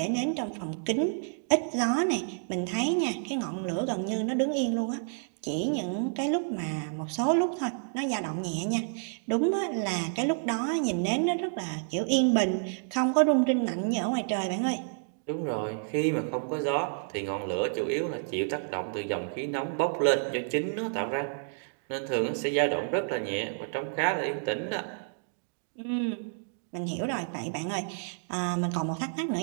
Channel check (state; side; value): silent; left; digital silence